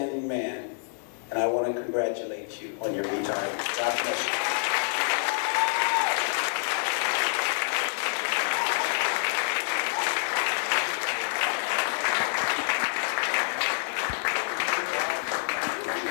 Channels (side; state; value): right; silent; digital silence